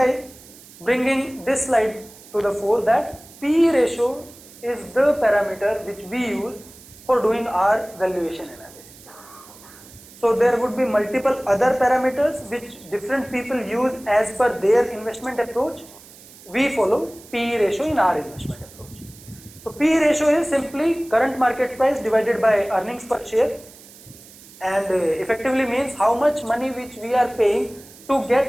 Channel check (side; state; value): right; noise; hiss, 21 dB below the sound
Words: bringing this slide to the fore, that PE ratio is the parameter which we use for doing our valuation analysis. So there would be multiple other parameters which different people use as per their investment approach. We follow PE ratio in our investment approach. So PE ratio is simply current market price divided by earnings per share, and effectively means how much money which we are paying to